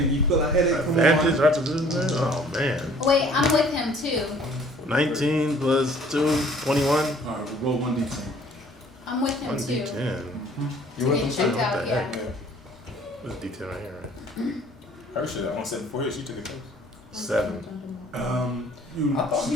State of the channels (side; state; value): both; normal; correlation 0.55